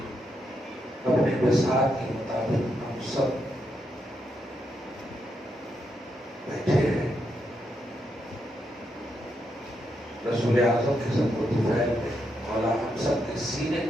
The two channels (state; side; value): normal; both; correlation 0.81